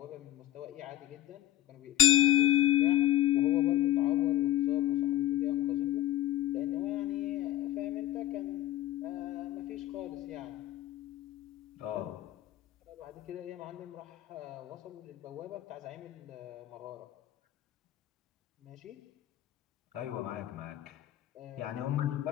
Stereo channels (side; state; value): right; quieter; 13.5 dB